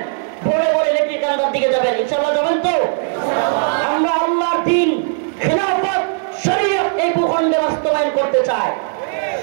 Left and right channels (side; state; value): left; silent; 63 dB below the other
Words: ভোরে ভোরে লেটির কান্দার দিকে যাবেন ইনশাআল্লাহ। যাবেন তো? আমরা আল্লাহর দ্বীন, খেলাফত, শরীয়ত এই ভূখণ্ডে বাস্তবায়ন করতে চাই।